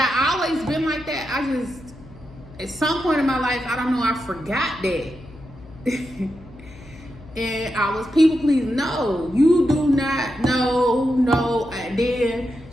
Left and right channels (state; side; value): noise; left; hum, 20 dB below the sound